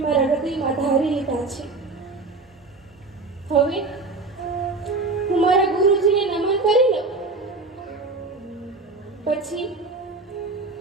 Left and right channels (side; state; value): left; quieter; 3.6 dB